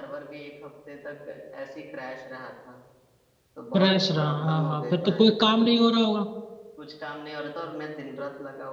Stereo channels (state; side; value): identical; both; correlation 1.00